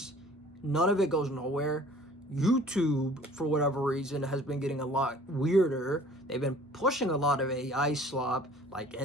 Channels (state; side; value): normal; both; correlation 0.50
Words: None of it goes nowhere. YouTube, for whatever reason, has been getting a lot weirder. They've been pushing a lot of AI slop, like